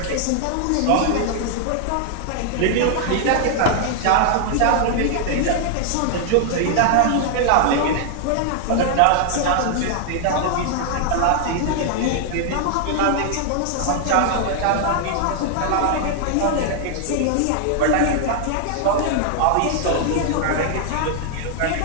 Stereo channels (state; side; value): different; both; correlation 0.00